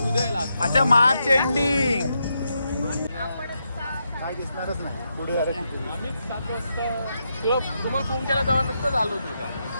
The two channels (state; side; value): inverted; both; correlation -0.83